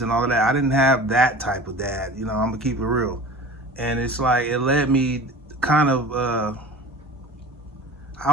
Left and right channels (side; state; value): both; normal; correlation 0.38